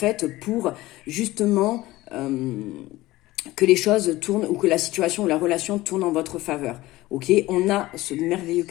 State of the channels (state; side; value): quieter; right; 18.0 dB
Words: pour justement que les choses tournent ou que la situation ou la relation tourne en votre faveur. Ok, on a ce merveilleux